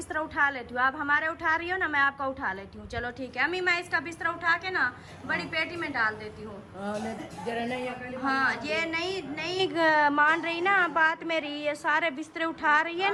उठा लेती हूँ। आप हमारे उठा रही हो ना, मैं आपका उठा लेती हूँ। चलो ठीक है अम्मी, मैं इसका बिस्तर उठा के ना बड़ी पेटी में डाल देती हूँ। हाँ, ये नहीं मान रही ना बात मेरी, ये सारे बिस्तर उठा रही है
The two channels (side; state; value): both; identical; correlation 1.00